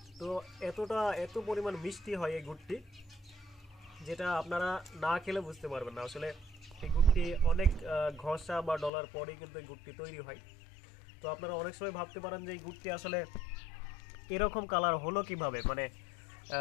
তো এত পরিমাণ মিষ্টি হয় এই গুড়টি, যেটা আপনারা না খেলে বুঝতে পারবেন না। আসলে এই গুড়টি অনেক ঘষা বা ডলার পরেই কিন্তু এই গুড়টি তৈরি হয়। তো আপনারা অনেক সময় ভাবতে পারেন যে এই গুড়টি আসলে এরকম কালার হলো কিভাবে, মানে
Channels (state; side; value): drops out; right; at 8.9 s